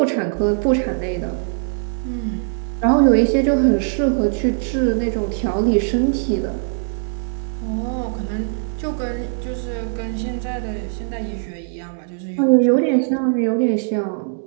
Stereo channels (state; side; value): silent; left; digital silence